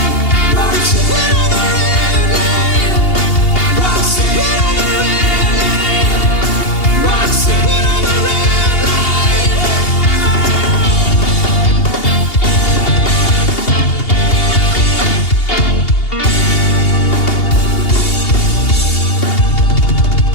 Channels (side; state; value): right; late; 2.8 ms